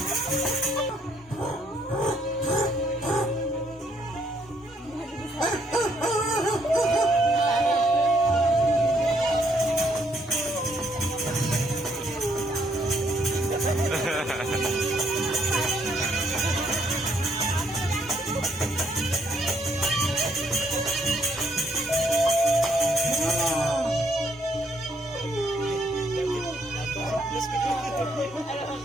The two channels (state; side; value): normal; both; correlation 0.70